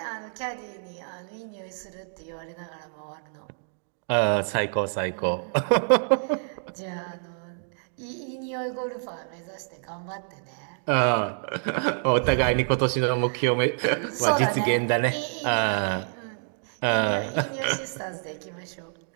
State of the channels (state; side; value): silent; left; digital silence